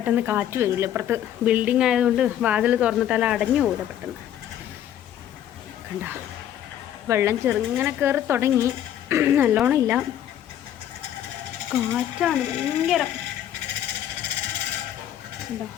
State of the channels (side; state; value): right; quieter; 10.9 dB